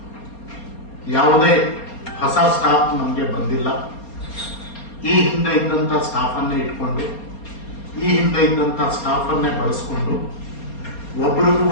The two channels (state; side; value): late; right; 4.3 ms